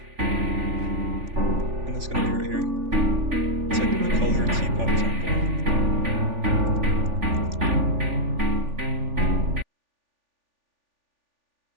and it's gonna be right here. It's like the color Teapot Temple.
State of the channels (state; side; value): late; left; 3.4 ms